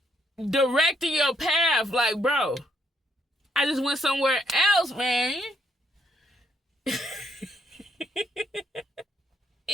directing your path. Like, bro, I just went somewhere else, man.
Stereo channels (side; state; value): both; normal; correlation 0.73